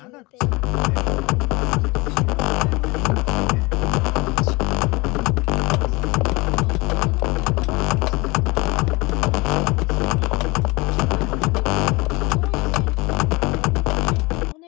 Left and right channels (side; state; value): right; quieter; 24.5 dB